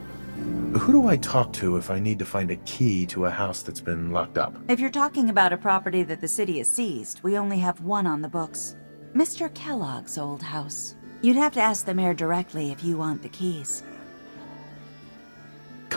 Who do I talk to if I need to find a key to a house that's been locked up? If you're talking about a property that the city has seized, we only have one on the books. Mr. Kellogg's old house. You'd have to ask the mayor directly if you want the keys.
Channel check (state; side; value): inverted; both; correlation -1.00